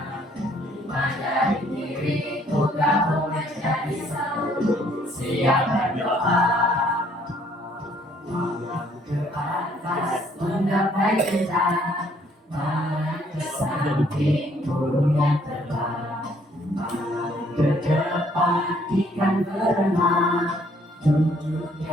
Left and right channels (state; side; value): normal; both; correlation 0.64